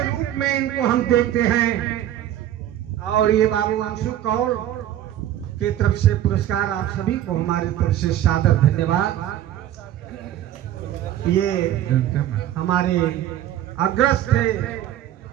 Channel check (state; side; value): quieter; left; 12.1 dB